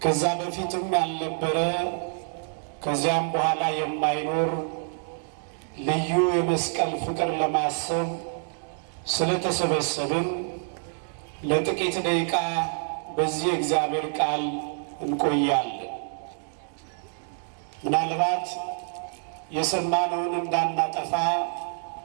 ከዛ በፊትም ያልነበረ ከዚያም በኋላ የማይኖር ልዩ የመስቀል ፍቅር ለማሰብ ስለተሰበሰብን ለጥቂት ደቂቃ በዚህ እግዚአብሔር ቃል እንቆያለን። ምናልባት የሰማነውን እንዳናጠፋ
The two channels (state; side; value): silent; left; 60 dB below the other